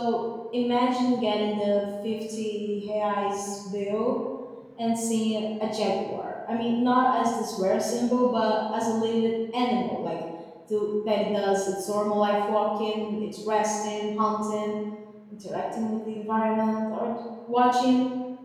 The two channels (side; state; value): both; identical; correlation 1.00